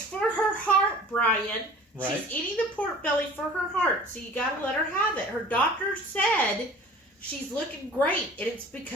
for her heart, Brian. Right. She's eating the pork belly for her heart, so you gotta let her have it. Her doctor said she's looking great, and it's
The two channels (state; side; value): normal; both; correlation 0.45